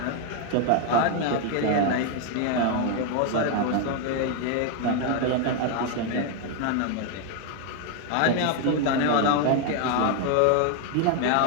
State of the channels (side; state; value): both; different; correlation 0.01